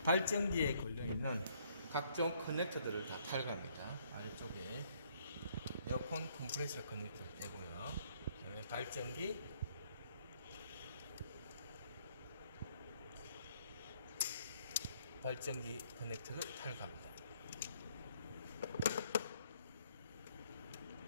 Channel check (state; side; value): inverted; both; correlation -0.66